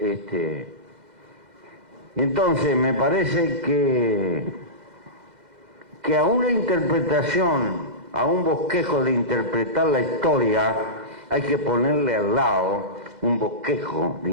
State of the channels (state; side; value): late; left; 2.0 ms